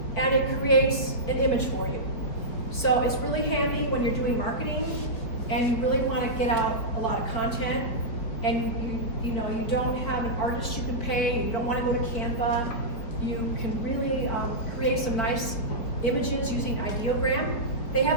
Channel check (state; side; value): late; right; 4.9 ms